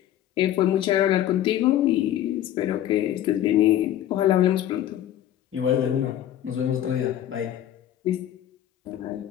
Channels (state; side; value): quieter; right; 11.9 dB